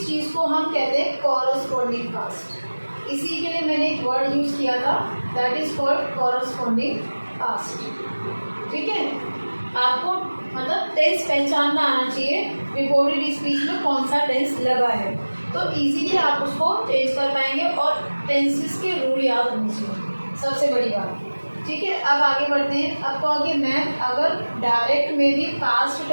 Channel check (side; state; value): both; inverted; correlation -1.00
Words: को हम कहते हैं कॉरस्पॉन्डिंग पास्ट। इसी के लिए मैंने एक वर्ड यूज किया था, that is called corresponding past. ठीक है, आपको मतलब टेंस पहचानना आना चाहिए रिपोर्टेड स्पीच में कौन सा टेंस लगा है, तो इजीली आप उसको चेंज कर पाएंगे और टेंसेस के रूल याद होने चाहिए, सबसे बड़ी बात। ठीक है, अब आगे बढ़ते हैं। अब कहोगे मैम अगर डायरेक्ट में भी पास्ट